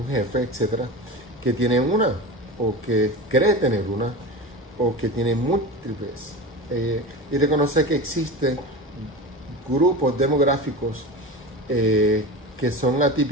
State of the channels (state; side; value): normal; both; correlation 0.28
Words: jefe, etcétera, que tiene una, o que cree tener una, o que tiene múltiples. Y reconocer que existen grupos demográficos que son